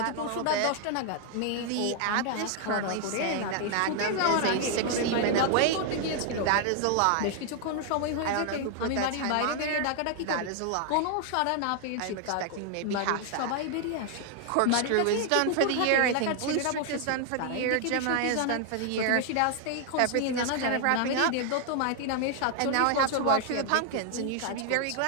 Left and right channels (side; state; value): both; different; correlation 0.00